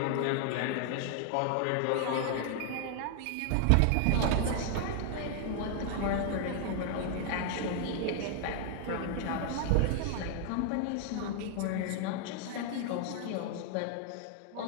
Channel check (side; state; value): both; different; correlation 0.00